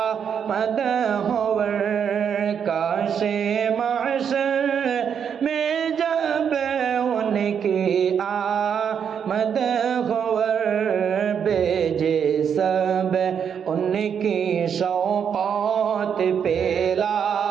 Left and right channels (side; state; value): left; quieter; 7.6 dB